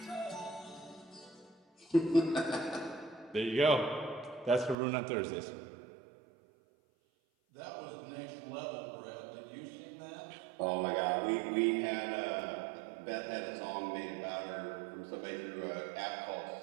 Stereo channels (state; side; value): drops out; left; at 4.8 s